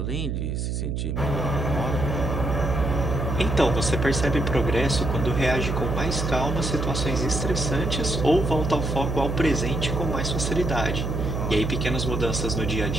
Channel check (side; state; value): right; noise; hum, 2 dB below the sound